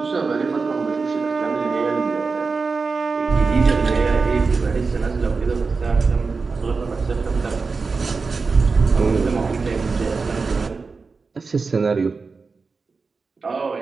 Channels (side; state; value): left; quieter; 4.5 dB